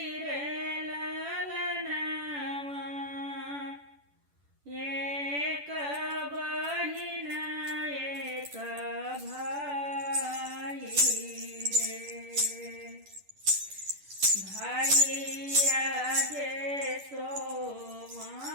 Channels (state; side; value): late; left; 10 ms